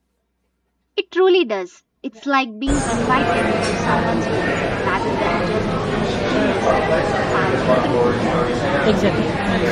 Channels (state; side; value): identical; both; correlation 1.00